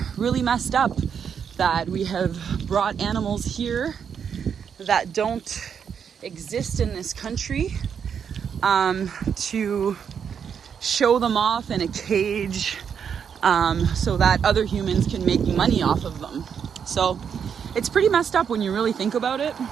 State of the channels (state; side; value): quieter; left; 7.4 dB